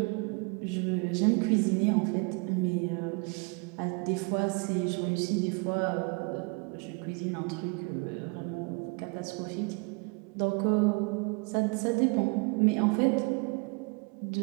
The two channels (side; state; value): left; quieter; 31.4 dB